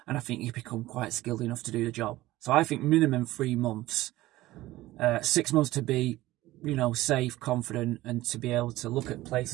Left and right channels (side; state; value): left; quieter; 17.1 dB